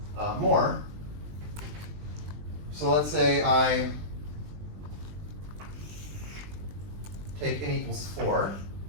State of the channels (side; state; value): left; late; 20 ms